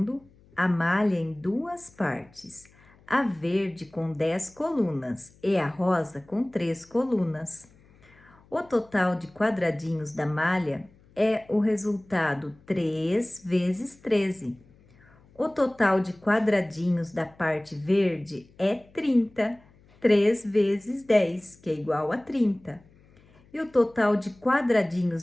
a malha em duas partes, a verde com 10 colunas e a rosa com 3 colunas. O total de quadradinhos da malha é o resultado 3 vezes 13. O total de quadradinhos da parte verde é 30, 3 vezes 10, que é igual a 30. E o total de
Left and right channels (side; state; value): left; noise; hum, 28 dB below the sound